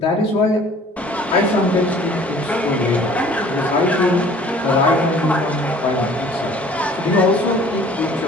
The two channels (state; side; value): normal; both; correlation 0.51